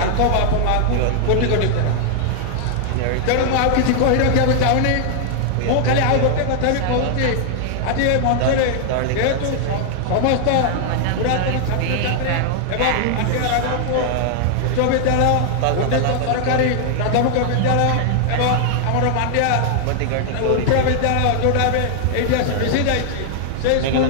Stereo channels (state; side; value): different; both; correlation -0.01